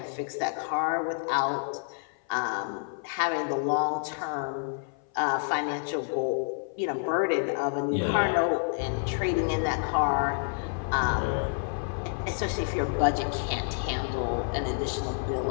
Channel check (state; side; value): silent; right; 55 dB below the other